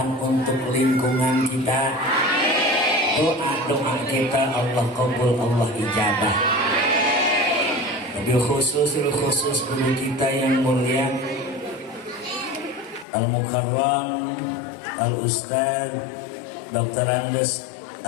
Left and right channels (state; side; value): drops out; right; at 13.1 s